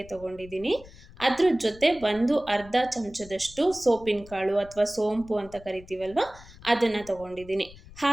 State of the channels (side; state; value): left; noise; rumble, 20 dB below the sound